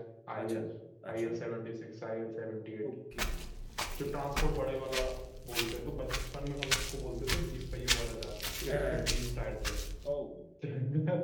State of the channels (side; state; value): both; identical; correlation 1.00